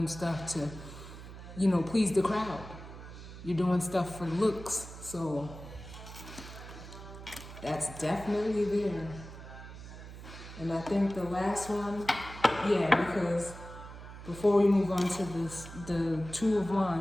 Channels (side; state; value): right; noise; hum, 13 dB below the sound